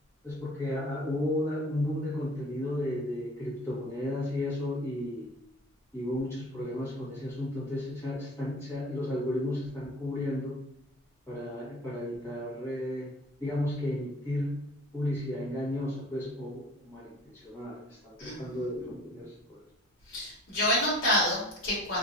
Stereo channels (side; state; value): both; normal; correlation 0.47